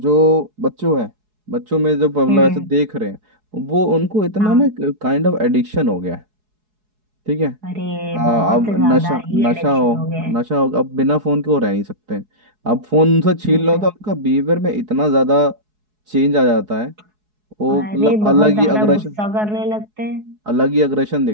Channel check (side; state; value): left; late; 4.7 ms